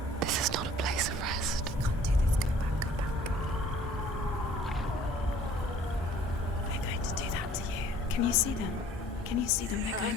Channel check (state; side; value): normal; both; correlation 0.53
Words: This is not a place of rest. You can't do this. Go back. Go back. They're going to do that to you. Can you see them? Can you see them? They're going